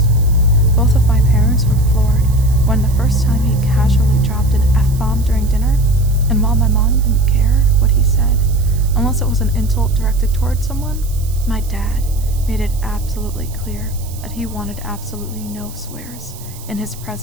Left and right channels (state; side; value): noise; right; hiss, 18 dB below the sound